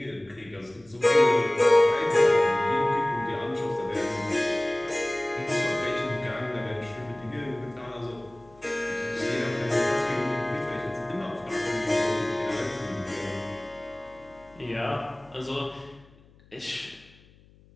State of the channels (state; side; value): noise; left; hum, 27 dB below the sound